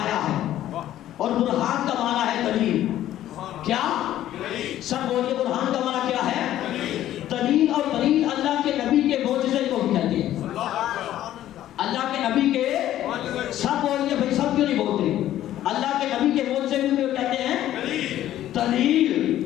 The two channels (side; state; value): right; quieter; 12.8 dB